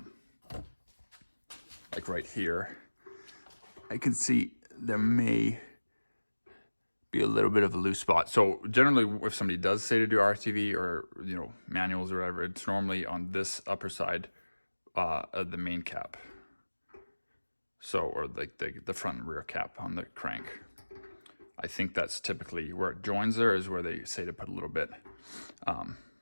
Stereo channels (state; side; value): inverted; both; correlation -1.00